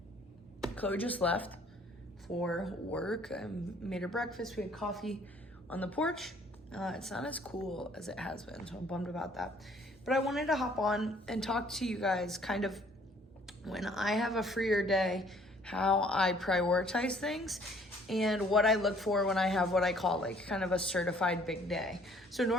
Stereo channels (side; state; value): both; normal; correlation 0.59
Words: Chloe just left for work. I made her breakfast. We had coffee on the porch. It's not as cool as it has been, so I'm bummed about that. But I wanted to hop on and talk to you guys kind of when I have a freer day, how I prioritize things and what I look for when I have what I call like kind of a certified big day. So